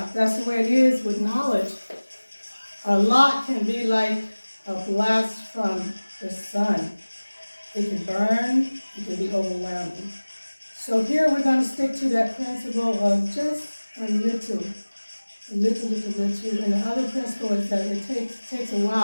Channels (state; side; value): inverted; both; correlation -1.00